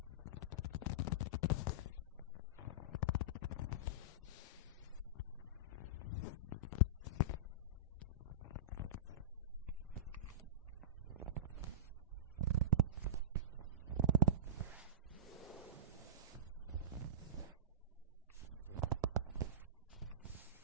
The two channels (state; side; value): normal; both; correlation -0.20